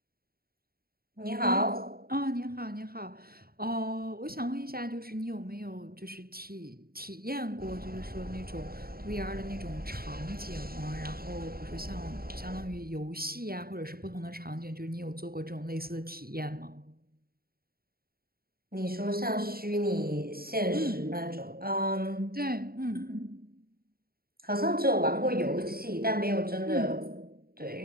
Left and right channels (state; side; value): late; left; 0.44 ms